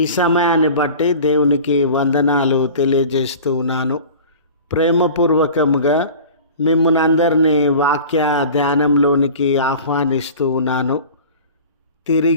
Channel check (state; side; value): inverted; both; correlation -0.40